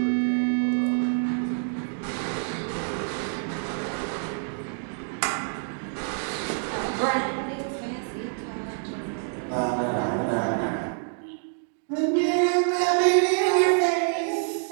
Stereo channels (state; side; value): silent; left; digital silence